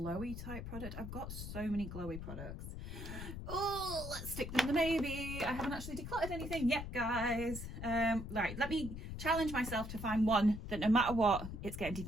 type product. I've got so many glowy products. Oh, let's stick them in the maybe. I haven't actually decluttered anything yet, guys. Right, let me challenge myself to find one that no matter what, it's getting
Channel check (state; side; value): noise; left; rumble, 7 dB below the sound